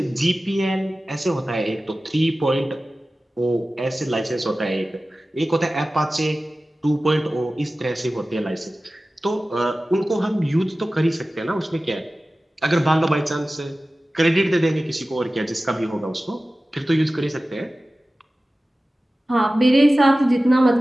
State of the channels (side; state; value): both; normal; correlation 0.96